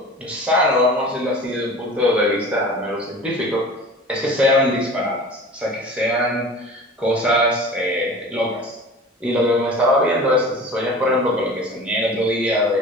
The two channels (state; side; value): normal; both; correlation 0.39